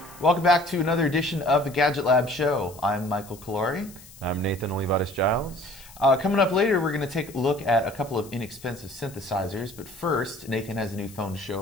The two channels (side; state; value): left; noise; hiss, 21 dB below the sound